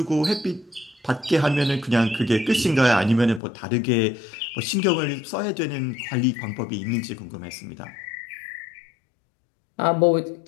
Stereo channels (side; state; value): right; drops out; at 3.4 s